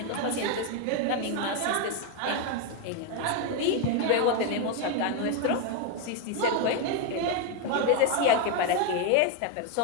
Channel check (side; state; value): both; different; correlation 0.01